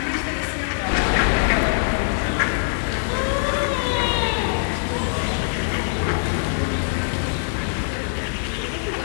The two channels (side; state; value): right; silent; 64 dB below the other